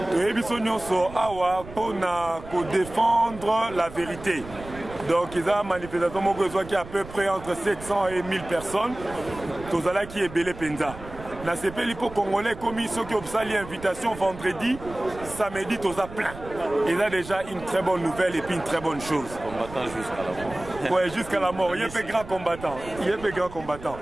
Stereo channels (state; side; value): noise; right; rumble, 15 dB below the sound